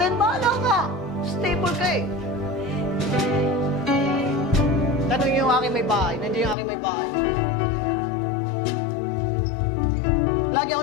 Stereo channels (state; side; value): drops out; right; at 6.6 s